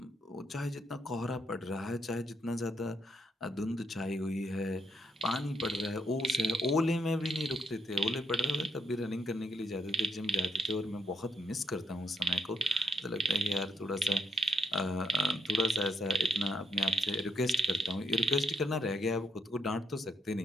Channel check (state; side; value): normal; both; correlation 0.78